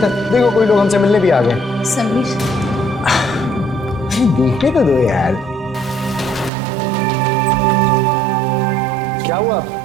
देखो, कोई लोग हमसे मिलने भी आ गए। समीर, देखने तो दो यार। क्या हुआ?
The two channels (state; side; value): drops out; left; at 6.5 s